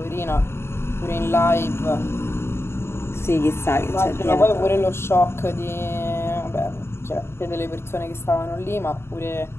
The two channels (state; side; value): late; right; 0.12 ms